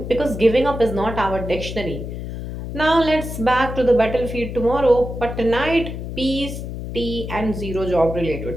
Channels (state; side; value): noise; left; hum, 7 dB below the sound